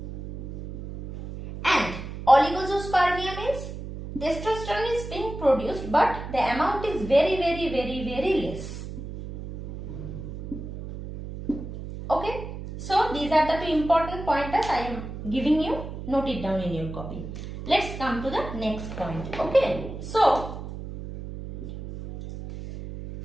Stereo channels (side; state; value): right; noise; hum, 9 dB below the sound